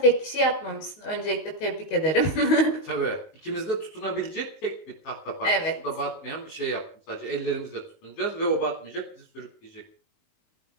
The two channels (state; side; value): late; right; 19 ms